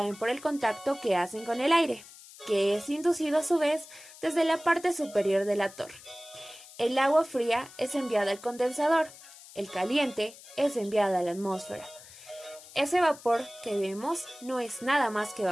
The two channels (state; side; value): noise; left; hiss, 19 dB below the sound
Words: por el contacto que hacen con el aire, que es inducido a su vez desde la parte superior de la torre. El agua fría es enviada al condensador, el caliente es enviado a la atmósfera. Ese vapor que vemos no es nada más que